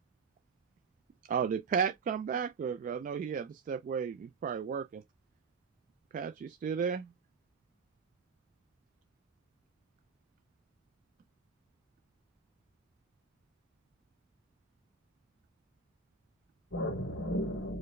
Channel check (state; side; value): quieter; left; 5.1 dB